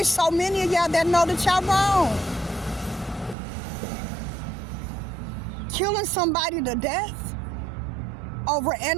so many of y'all that know that y'all wrong. Killing somebody to death over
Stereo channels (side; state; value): left; drops out; at 3.4 s